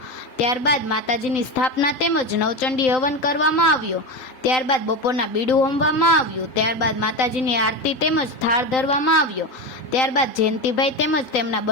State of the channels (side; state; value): right; late; 3.9 ms